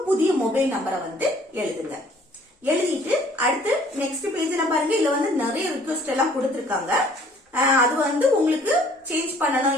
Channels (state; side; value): normal; both; correlation 0.57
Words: புதிய மொபைல் நம்பரை வந்து எழுதுங்க. எழுதிட்டு அடுத்து நெக்ஸ்ட் பேஜ்ல பாருங்க, இதுல வந்து நிறைய ரிக்வெஸ்ட் எல்லாம் கொடுத்திருக்காங்க. அது வந்து உங்களுக்கு சேஞ்ச் பண்ணணும்,